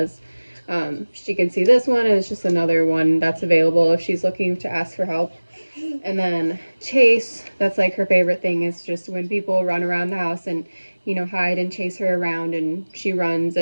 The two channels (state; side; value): inverted; both; correlation -1.00